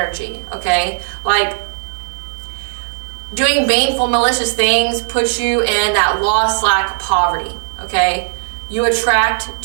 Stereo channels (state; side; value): silent; left; digital silence